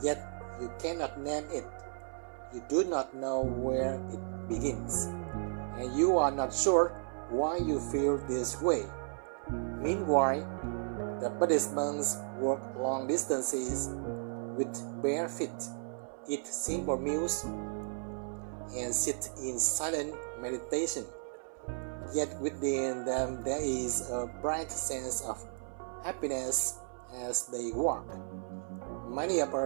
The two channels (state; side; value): silent; left; 55 dB below the other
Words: yet you cannot name it. You do not know where it begins, and you are not sure why you feel this way. Meanwhile, the Buddhist monks walk long distances with bare feet, eat simple meals, and sit in silent meditation. Yet within them there is a bright sense of happiness as they walk. Many of